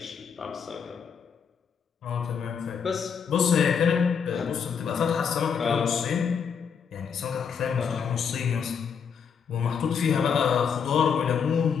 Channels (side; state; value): right; quieter; 6.8 dB